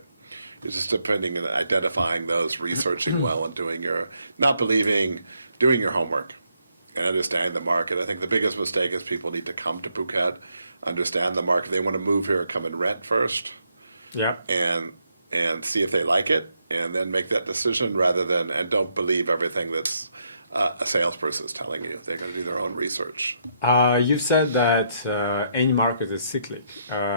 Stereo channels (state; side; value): inverted; both; correlation -0.76